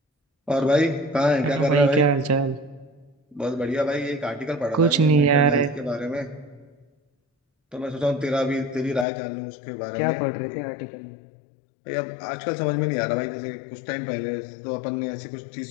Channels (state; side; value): drops out; right; at 9.1 s